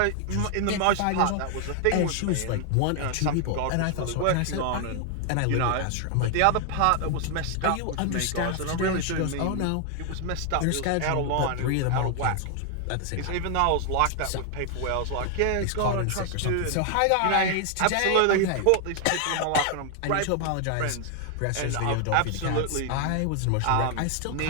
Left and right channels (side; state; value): both; different; correlation 0.00